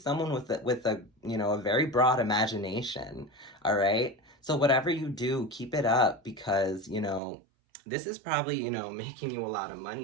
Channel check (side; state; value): left; drops out; at 7.2 s